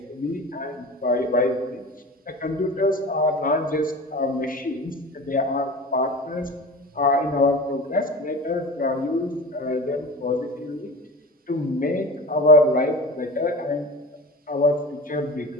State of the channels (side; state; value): both; normal; correlation 0.33